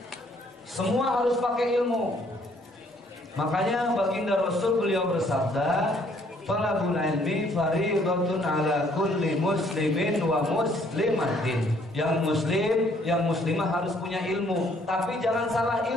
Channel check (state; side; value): normal; both; correlation 0.64